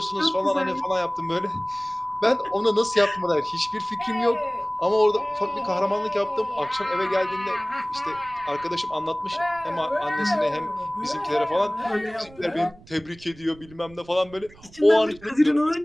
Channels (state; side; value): noise; right; rumble, 23 dB below the sound